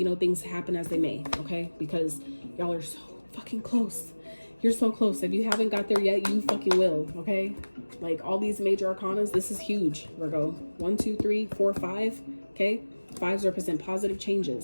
know, things to happen as they may. Okay, because y'all are so fucking close. You're so close. If you haven't got there yet, you fucking will. Okay, like all these major arcanas, this is huge, Virgo. 1, 2, 3, 4, 5. Okay, 5s represent positive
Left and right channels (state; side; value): inverted; both; correlation -1.00